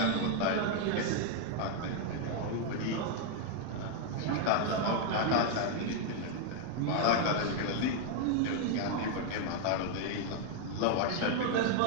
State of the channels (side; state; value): both; different; correlation 0.00